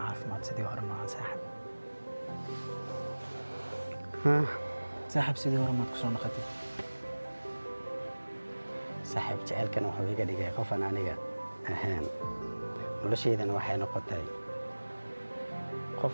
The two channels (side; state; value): both; inverted; correlation -1.00